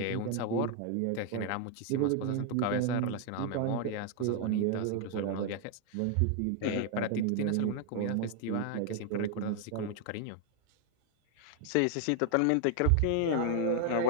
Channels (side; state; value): both; different; correlation 0.00